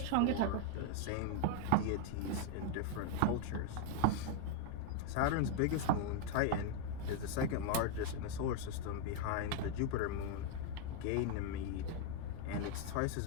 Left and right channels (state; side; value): different; both; correlation 0.00